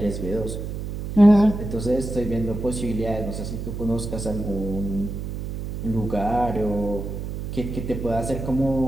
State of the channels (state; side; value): noise; right; hum, 6 dB below the sound